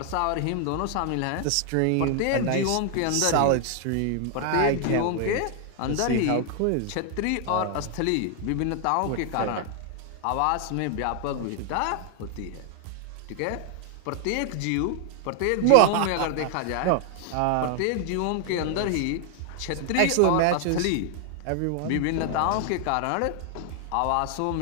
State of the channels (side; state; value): both; different; correlation 0.00